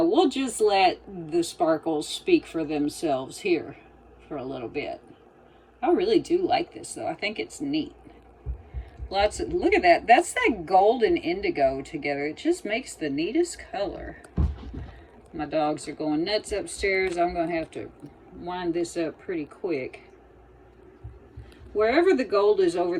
we'll just let the sparkles speak for themselves here for a little bit. I really do like this though. I think it's neat. Lots of, look at that. That's that gold and indigo together. It just makes the neatest color. My dogs are going nuts upstairs. I'm going to have to wind this up pretty quick. Wherever the gold is over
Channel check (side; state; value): both; identical; correlation 1.00